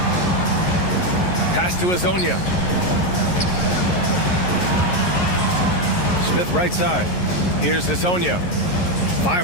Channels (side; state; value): right; late; 11 ms